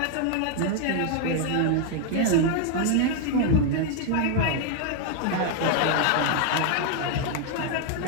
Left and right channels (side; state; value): both; different; correlation 0.01